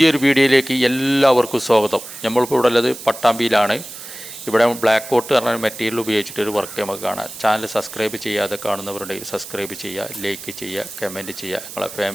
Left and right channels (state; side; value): noise; right; hiss, 13 dB below the sound